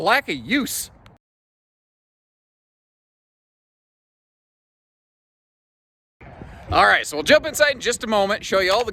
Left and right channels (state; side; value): identical; both; correlation 1.00